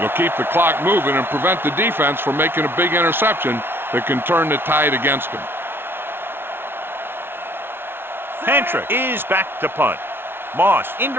keep the clock moving and prevent the defense from making a big interception that can turn the tide against them. Pantrick is back to punt. Moss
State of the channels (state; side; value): late; left; 0.11 ms